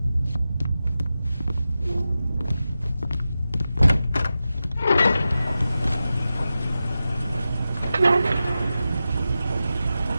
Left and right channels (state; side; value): inverted; both; correlation -0.92